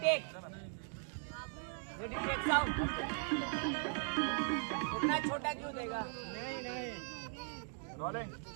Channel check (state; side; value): silent; left; 52 dB below the other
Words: टेक साउंड। इतना छोटा क्यों देगा? नहीं rolling